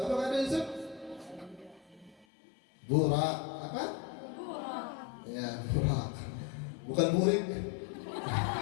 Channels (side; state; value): right; drops out; at 2.2 s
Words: apa kado Yusuf? Burak apa? Burak. Ya, burak. Bukan burik.